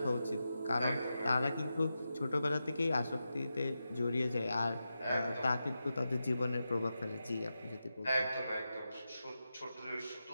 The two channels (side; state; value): both; inverted; correlation -0.90